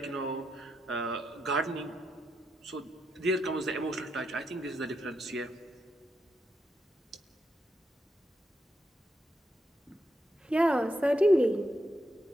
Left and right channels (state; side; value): normal; both; correlation 0.82